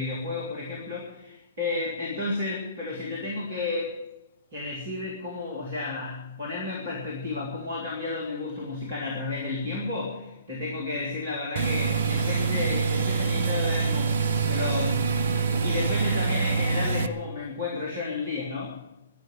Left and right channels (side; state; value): both; inverted; correlation -0.60